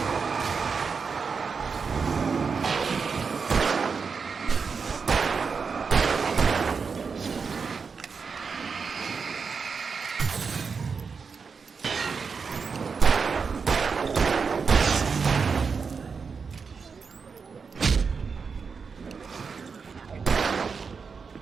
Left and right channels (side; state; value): left; quieter; 5.4 dB